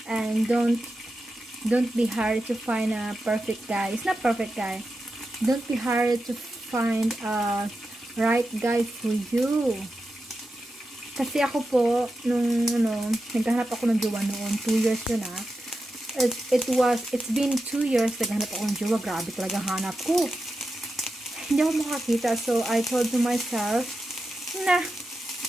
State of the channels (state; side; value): normal; both; correlation 0.90